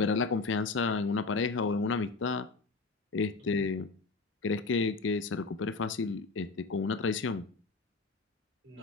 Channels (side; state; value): right; quieter; 4.0 dB